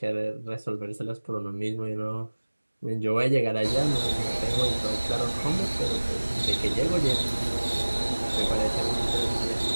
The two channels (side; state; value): both; inverted; correlation -1.00